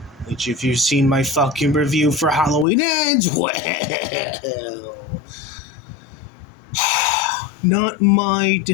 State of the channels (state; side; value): drops out; right; at 2.7 s